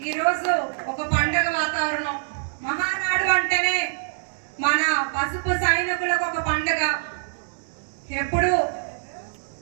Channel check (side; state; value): left; silent; digital silence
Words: ఈరోజు ఒక పండుగ వాతావరణం. మహానాడు అంటేనే మన పసుపు సైనికులకు ఒక పండుగ. ఎప్పుడు